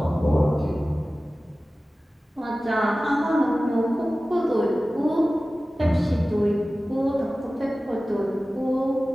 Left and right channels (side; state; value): both; normal; correlation 0.96